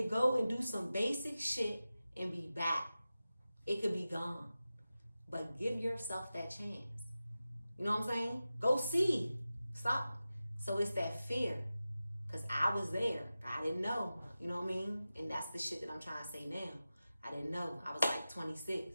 go and do some basic shit and be back. It could be gone. But give yourself that chance. You know what I'm saying? Go see. Stop. So it's that fear. Because I was there. I didn't know. You know what I mean? And that's the shit that I'm trying to say now. I didn't know. I was like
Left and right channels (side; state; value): both; inverted; correlation -0.94